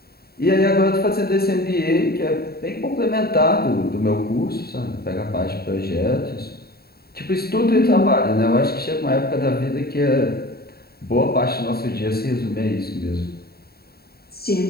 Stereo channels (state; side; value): late; right; 0.45 ms